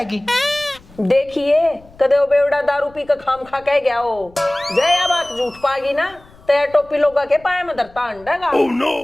देखिए कदे वो बेवड़ा दारू पी का खाम खा कह गया हो, जय या बात झूठ पागी ना तो टोपी लोगा के पाए में धरता अंडेगा। oh, no.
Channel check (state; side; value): noise; left; rumble, 25 dB below the sound